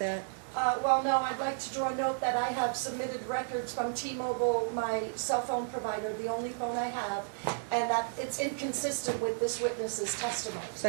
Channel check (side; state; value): left; silent; 56 dB below the other